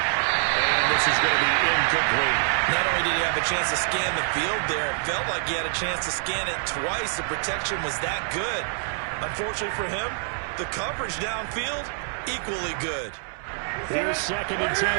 And this is going to be incomplete. Not only did he have a chance to scan the field there, it felt like he had a chance to scan it twice. The protection was that good. Unfortunately for him, the coverage downfield, equally good. Here's 2nd and 10.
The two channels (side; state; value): left; silent; 61 dB below the other